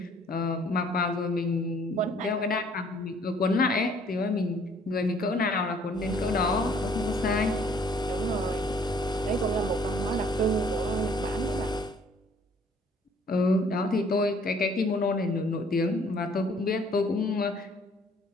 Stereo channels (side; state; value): both; normal; correlation 0.59